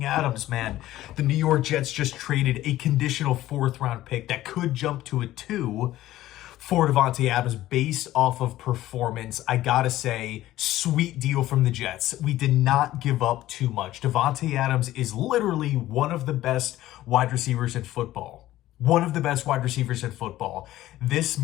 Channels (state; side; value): quieter; right; 14.9 dB